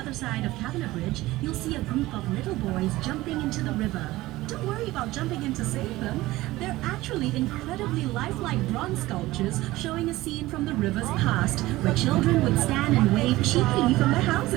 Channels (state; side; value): quieter; left; 18.0 dB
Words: side of Kavanagh Bridge, you'll see a group of little boys jumping into the river. Don't worry about jumping in to save them. They're actually incredibly lifelike bronze sculptures showing a scene from the river's past, where children would stand and wave cheekily from their